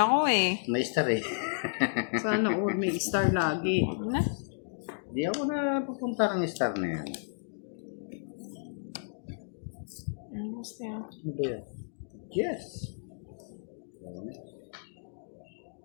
eh. May star eh. Sana all may star lagi. Huwag na. Di ako na pupunta ng star na yan. Basta yun. Ano ba yan? Yes.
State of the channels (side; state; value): right; silent; digital silence